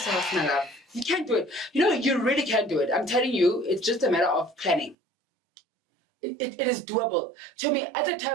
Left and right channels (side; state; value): left; drops out; at 5.0 s